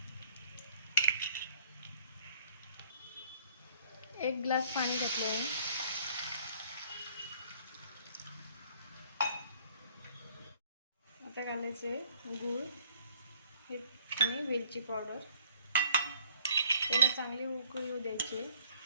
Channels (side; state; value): both; inverted; correlation -0.58